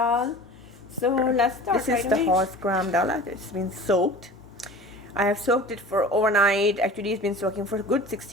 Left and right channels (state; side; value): normal; both; correlation 0.39